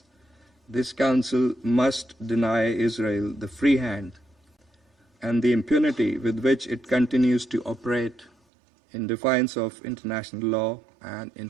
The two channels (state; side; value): drops out; left; at 8.3 s